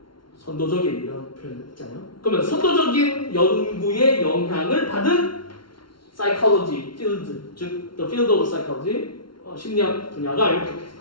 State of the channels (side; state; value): right; late; 0.73 ms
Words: 선도적인 이런 표현 있잖아요. 그러면 선도적인 연구에 영향을 받은 psychology field, 즉 the field of psychology 심리학 분야가 이렇게